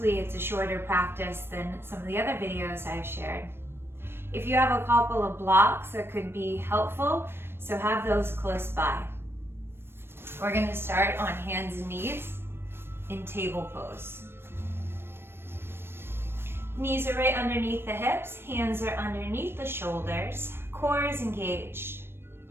it's a shorter practice than some of the other videos I've shared. If you have a couple of blocks that could be helpful, so have those close by. We're going to start on hands and knees in table pose. Knees are right underneath the hips, hands are underneath the shoulders, core is engaged.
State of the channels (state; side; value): late; left; 0.11 ms